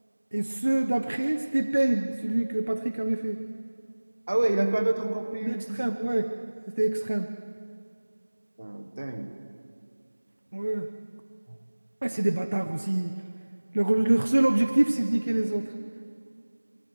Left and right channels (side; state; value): both; inverted; correlation -1.00